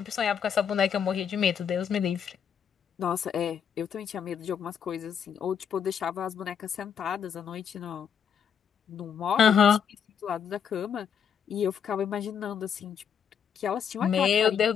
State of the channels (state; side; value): quieter; right; 7.7 dB